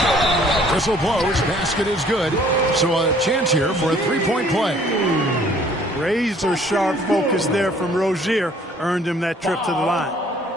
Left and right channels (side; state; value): both; normal; correlation 0.58